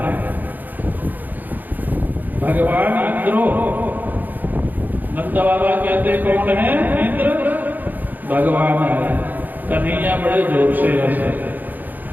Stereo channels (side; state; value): left; late; 0.085 ms